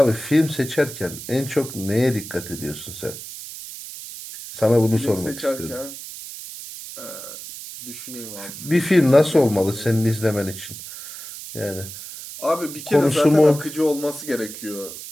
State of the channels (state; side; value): noise; right; hiss, 12 dB below the sound